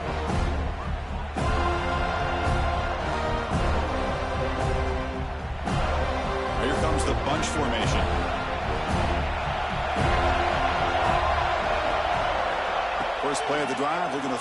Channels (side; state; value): both; identical; correlation 1.00